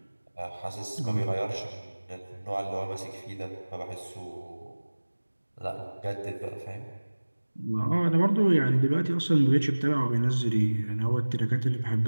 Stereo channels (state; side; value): inverted; both; correlation -1.00